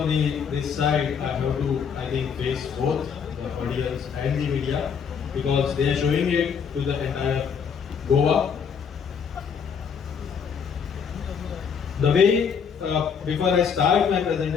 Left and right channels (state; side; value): quieter; right; 6.8 dB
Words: this side, I have to, I think, face both the audience and the media because they are showing it to the entire Goa. The way, before I start my